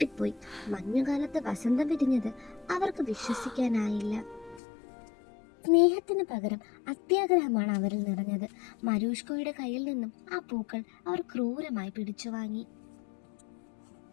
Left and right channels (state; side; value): drops out; right; at 4.6 s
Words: മഞ്ഞുകാലത്ത് വസന്തം വിരിഞ്ഞത് അവർക്ക് വിശ്വസിക്കാനായില്ല. സ്നേഹത്തിന് പകരം അത്യാഗ്രഹമാണ് അവരിൽ നിറഞ്ഞത്. മരൂഷ്കയുടെ കയ്യിൽ നിന്നും ആ പൂക്കൾ അവർ ക്രൂരമായി പിടിച്ചു വാങ്ങി.